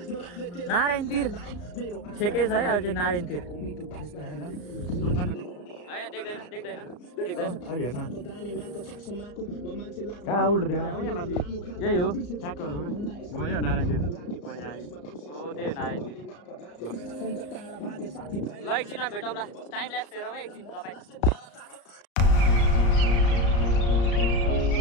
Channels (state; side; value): late; right; 34 ms